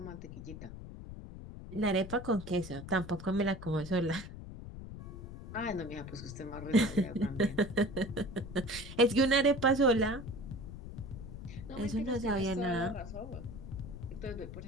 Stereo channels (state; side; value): noise; left; rumble, 11 dB below the sound